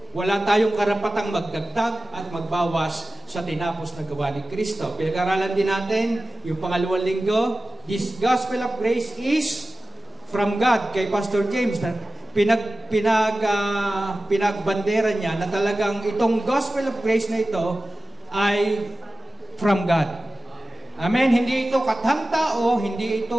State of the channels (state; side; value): normal; both; correlation 0.96